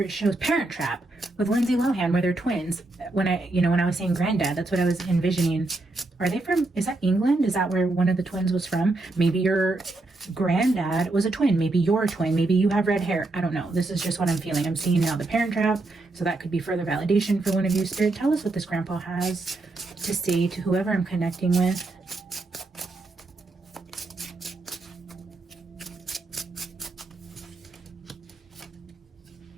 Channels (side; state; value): left; quieter; 3.1 dB